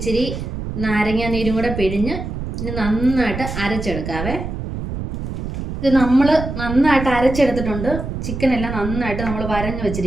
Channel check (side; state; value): right; noise; rumble, 6 dB below the sound